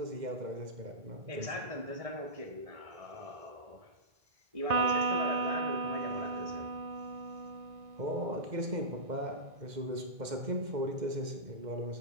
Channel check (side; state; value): left; late; 2.1 ms